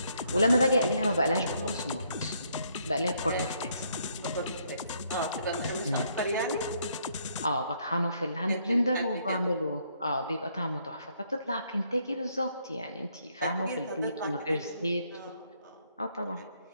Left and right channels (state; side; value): inverted; both; correlation -0.71